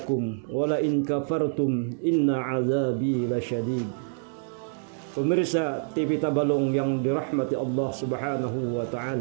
wa la in kafartum inna azabi lasyadid. Pemirsa TV Tabalong yang dirahmati Allah Subhanahu wa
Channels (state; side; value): silent; left; digital silence